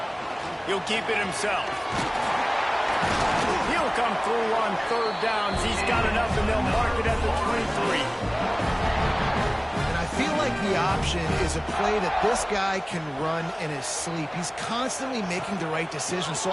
He'll keep it himself. He'll come through on 3rd downs. He's got enough, and they'll mark it at the 23. And I feel like the option is a play that this guy can run in his sleep. He's constantly making the right decision, so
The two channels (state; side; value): identical; both; correlation 1.00